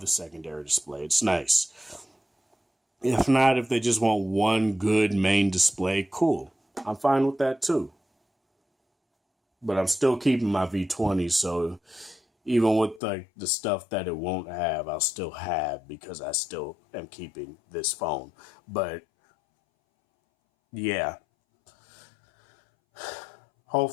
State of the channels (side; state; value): right; drops out; at 13.0 s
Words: the secondary display. It's nice. If not, if they just want one good main display, cool. I'm fine with that too. But I'm still keeping my V20, so even with the stuff that it won't have, I'll still have because I still am keeping this phone. But yeah.